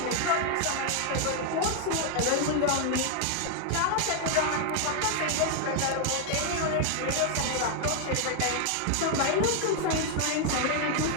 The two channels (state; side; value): different; both; correlation 0.00